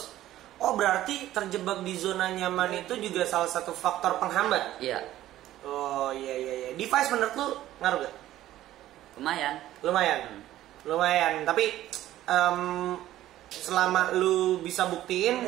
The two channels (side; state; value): left; quieter; 14.0 dB